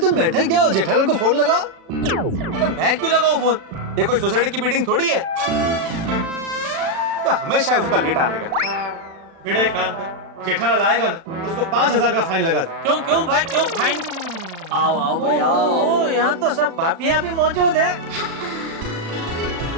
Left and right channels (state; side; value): late; left; 36 ms